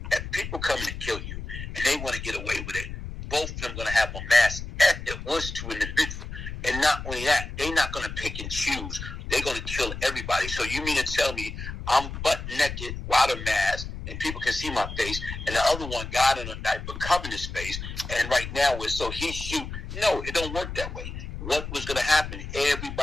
if people come in to kill you and they want to get away with it, both of them going to have a mask if it was to an individual. And not only that, they're not going to pick and choose. They're going to kill everybody. So you mean to tell me I'm butt naked without a mask and people can see my face, and the other one got in a diaper covering his face, and right now so he shoot? No, it don't work that way. What was going to happen?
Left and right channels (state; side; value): noise; left; rumble, 8 dB below the sound